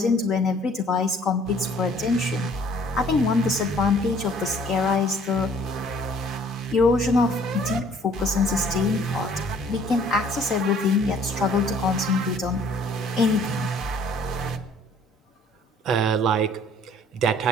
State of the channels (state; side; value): normal; both; correlation 0.57